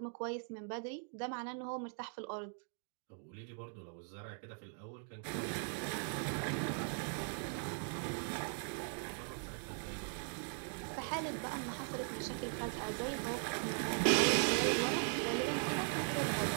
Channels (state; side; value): silent; left; 51 dB below the other